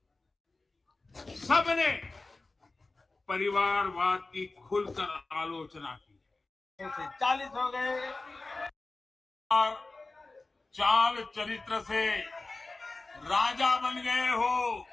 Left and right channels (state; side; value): quieter; right; 3.3 dB